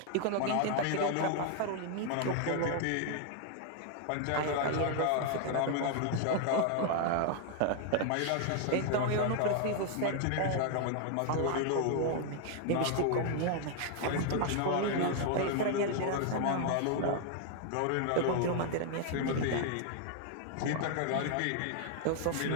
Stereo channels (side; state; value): both; different; correlation 0.00